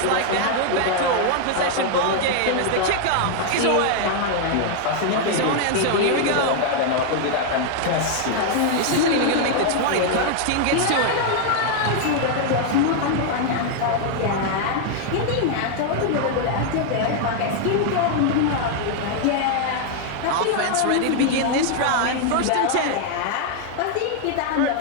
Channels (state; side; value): different; both; correlation 0.00